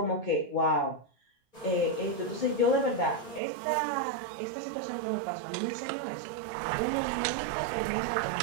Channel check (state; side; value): drops out; left; at 3.4 s